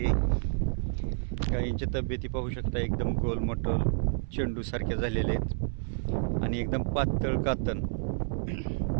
गायींच्या तब्येती पाहू शकता एकदम गोलमटोल चेंडू सारख्या झालेले आहेत आणि एकदम पातळ कातन,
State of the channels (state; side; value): silent; left; 58 dB below the other